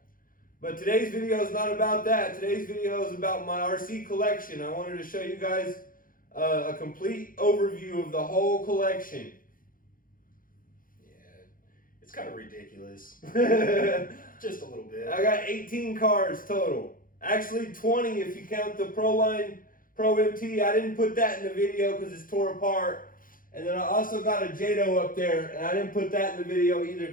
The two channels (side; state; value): right; late; 0.40 ms